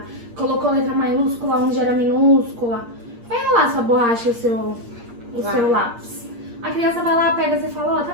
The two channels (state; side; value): late; left; 8.5 ms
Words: colocou letra maiúscula onde era minúscula, vai rolar sua borracha e o seu lápis. A criança vai lá, pega e fala, ó, tá